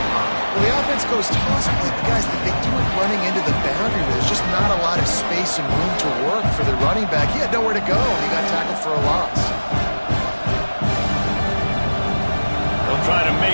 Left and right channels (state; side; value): inverted; both; correlation -1.00